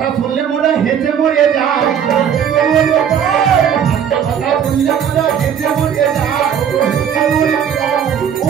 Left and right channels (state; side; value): quieter; left; 8.4 dB